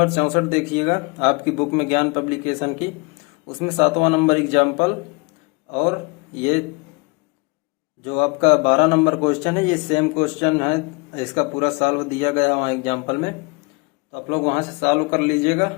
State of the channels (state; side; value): quieter; right; 29.4 dB